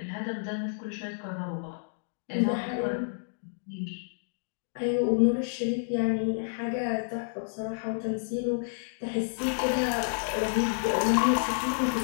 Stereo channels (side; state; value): right; silent; digital silence